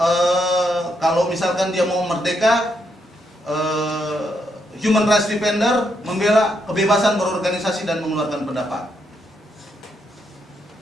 kalau misalkan dia mau merdeka, human rights defender membela kebebasan berorganisasi dan mengeluarkan pendapat.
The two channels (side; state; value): both; normal; correlation 0.78